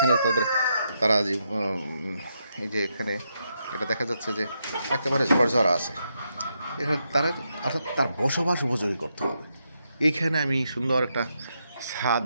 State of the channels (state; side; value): inverted; both; correlation -0.82